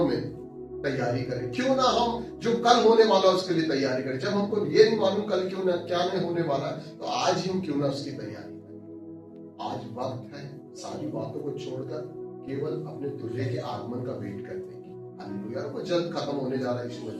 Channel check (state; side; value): identical; both; correlation 1.00